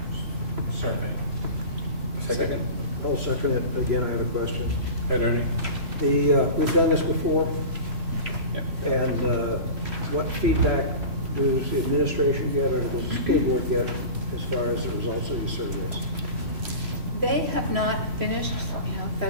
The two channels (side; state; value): left; late; 3.0 ms